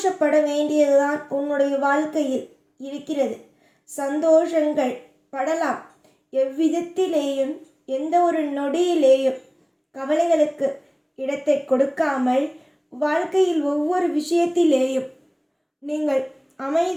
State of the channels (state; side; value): identical; both; correlation 1.00